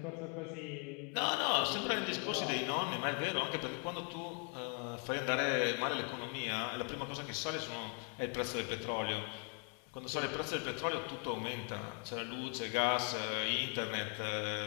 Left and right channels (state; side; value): quieter; right; 38.6 dB